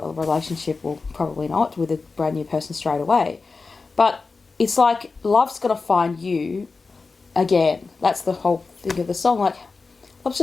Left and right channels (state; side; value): quieter; right; 4.2 dB